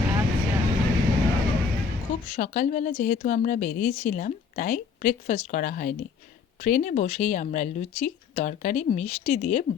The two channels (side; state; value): right; quieter; 5.7 dB